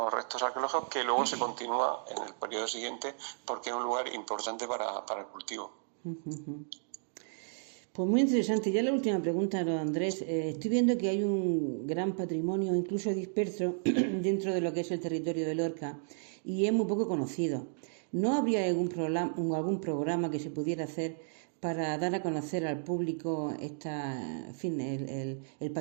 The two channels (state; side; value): silent; left; digital silence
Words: restos arqueológicos que luego se continúa en el periodo siguiente porque es un lugar importante para el cultivo. Pues muy interesante. Ya la última pregunta, Andrés. Estoy viendo que hay un gran patrimonio, incluso disperso, dentro de lo que es el territorio de Lorca y es muy poco conocido. ¿No habría algún programa que se pudiera hacer para dar a conocer al público el